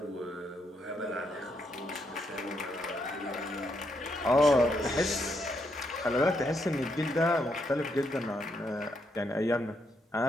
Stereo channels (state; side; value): normal; both; correlation 0.77